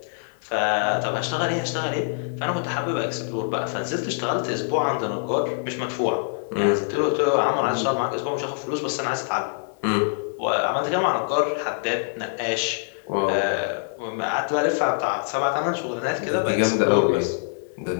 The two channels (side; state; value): right; silent; 59 dB below the other